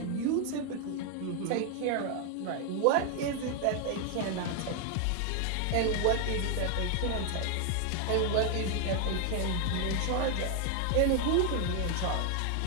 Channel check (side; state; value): both; different; correlation 0.00